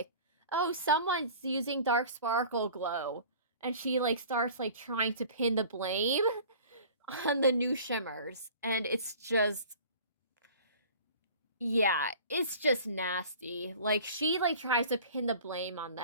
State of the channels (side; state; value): both; inverted; correlation -0.44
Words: oh, someone's using dark sparkle glow, and she like starts like trying to pin the blame on the new shimmers, and it's just, yeah, it's just nasty. Like she like tries to pin the blame on